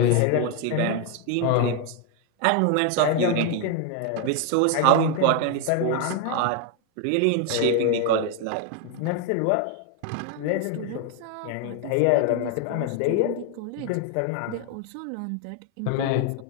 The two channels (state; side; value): different; both; correlation 0.01